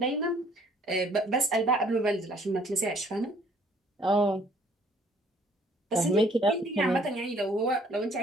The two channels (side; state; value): both; normal; correlation 0.59